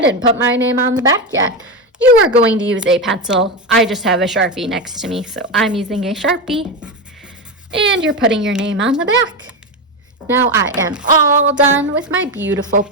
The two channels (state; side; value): normal; both; correlation 0.14